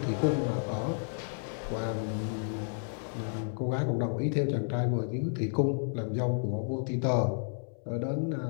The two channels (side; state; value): right; silent; 57 dB below the other